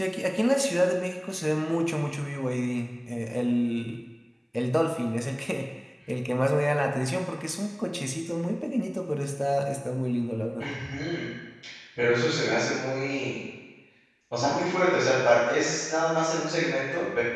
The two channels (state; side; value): identical; both; correlation 1.00